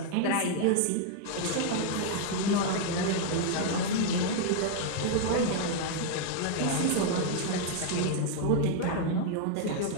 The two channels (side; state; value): both; different; correlation 0.00